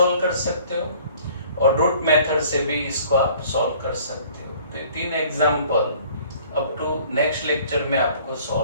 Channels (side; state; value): both; inverted; correlation -0.53